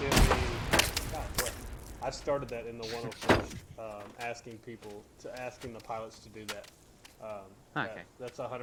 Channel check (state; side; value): identical; both; correlation 1.00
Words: in the. God, what? I started that in the 101st, asking the pilots to do that. Okay. That's